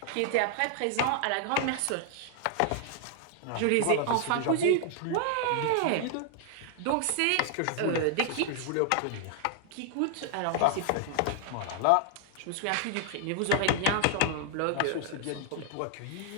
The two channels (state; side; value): different; both; correlation 0.00